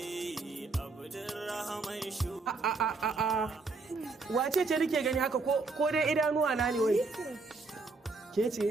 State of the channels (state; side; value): quieter; left; 3.9 dB